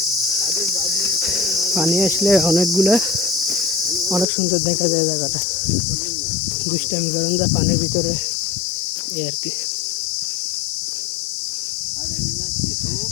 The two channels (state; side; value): drops out; right; at 4.2 s